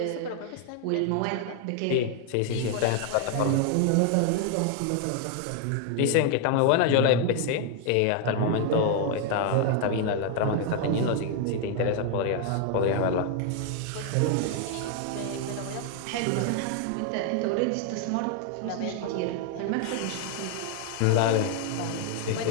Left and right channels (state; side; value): different; both; correlation 0.00